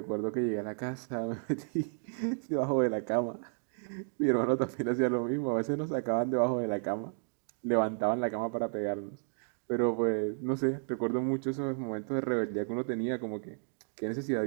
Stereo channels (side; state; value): left; silent; 56 dB below the other